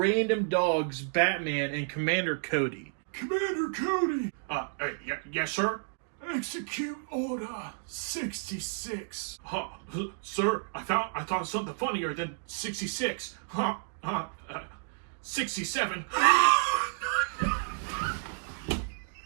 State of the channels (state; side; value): silent; left; digital silence